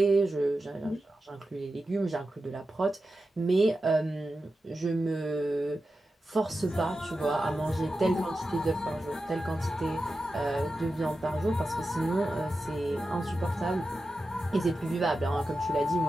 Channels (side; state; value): both; normal; correlation 0.91